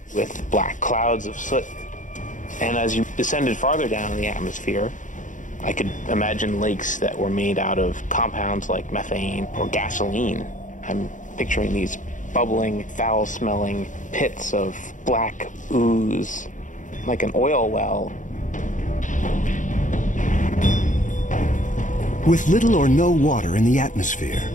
with black clouds of soot. And as you descended farther down in the atmosphere, I could imagine lakes that were made out of compounds like methane or gasoline. I'm picturing these bubbling, foul-smelling pits of black ooze, like an oil well. With little or no water in the atmosphere,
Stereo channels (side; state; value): right; late; 0.37 ms